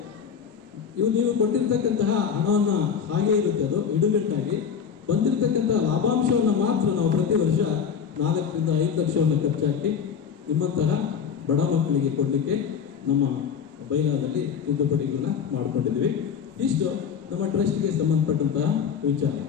ನೀವು ಕೊಟ್ಟಿರ್ತಕ್ಕಂತಹ ಹಣವನ್ನು ಹಾಗೆ ಇರುತ್ತೆ, ಅದು ಇಡುಗಟ್ಟಾಗಿ ಬಂದಿರತಕ್ಕಂಥ ಲಾಭಾಂಶವನ್ನು ಮಾತ್ರ ನಾವು ಪ್ರತಿ ವರ್ಷ 4 ರಿಂದ 5 ಲಕ್ಷವನ್ನು ಖರ್ಚಾಕಿ ನಿಮ್ಮಂತಹ ಬಡ ಮಕ್ಕಳಿಗೆ ಕೊಡಲಿಕ್ಕೆ ನಮ್ಮ ಬೈಲಾದಲ್ಲಿ ತಿದ್ದುಪಡಿಗಳನ್ನ ಮಾಡಿಕೊಂಡಿದ್ದೀವಿ. ಇಷ್ಟು ನಮ್ಮ ಟ್ರಸ್ಟ್ಗೆ ಸಂಬಂಧಪಟ್ಟಂತಹ ವಿಚಾರ.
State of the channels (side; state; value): right; quieter; 7.1 dB